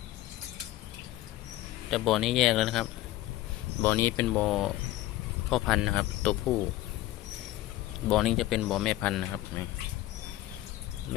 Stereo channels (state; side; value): quieter; right; 15.6 dB